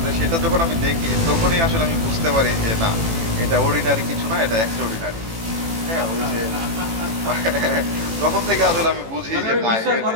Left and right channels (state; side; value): late; left; 18 ms